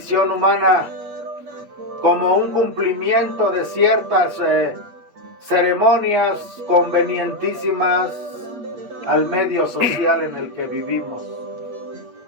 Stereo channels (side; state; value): left; late; 8.4 ms